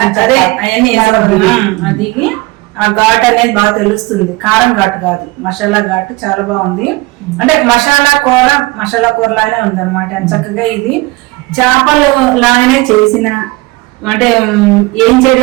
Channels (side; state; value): left; quieter; 22.2 dB